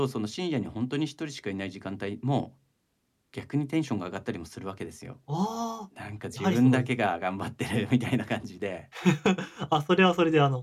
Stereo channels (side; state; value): both; identical; correlation 1.00